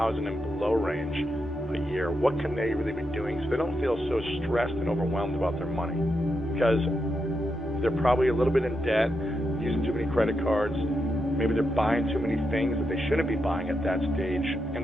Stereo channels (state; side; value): normal; both; correlation 0.84